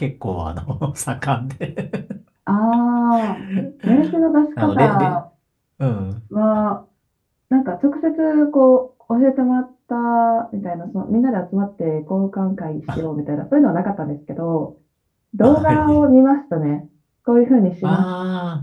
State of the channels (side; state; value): both; identical; correlation 1.00